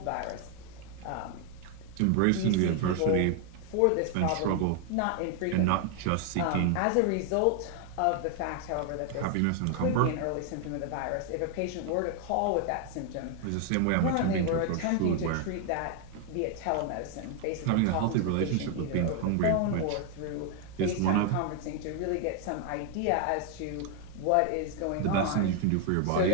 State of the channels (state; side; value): different; both; correlation 0.00